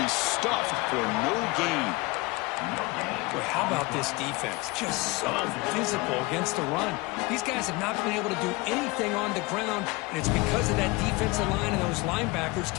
stuffed for no gain. Boy, how about this defense? Just so physical against the run. These guys have not been able to do anything on the ground, and it's because of that defensive line and those linebackers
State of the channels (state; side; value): quieter; right; 23.8 dB